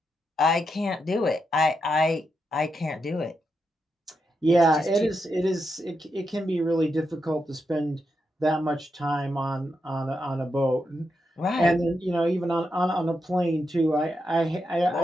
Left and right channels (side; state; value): both; normal; correlation 0.85